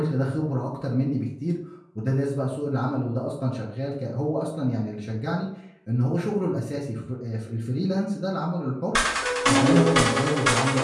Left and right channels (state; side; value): identical; both; correlation 1.00